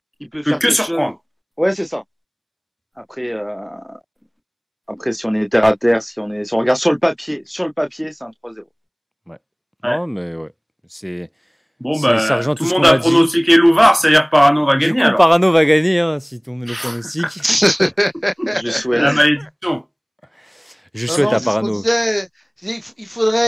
Il peut faire que surprendre. Ouais, c'est ça. Après, si on est terre à terre, si on regarde sur le papier, c'est un 3-0. Ouais. Non, mais ouais. C'est. Bon, ça rejoint tout le monde a pronostiqué Louvard, c'est-à-dire Parano va gagner. Du coup, Parano va gagner, hein, si tu met le pronostic. Je souhaite. La malédiction. Je souhaite à Parano. Il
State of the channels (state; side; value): identical; both; correlation 1.00